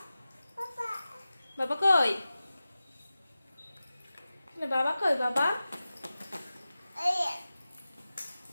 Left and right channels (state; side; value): inverted; both; correlation -0.95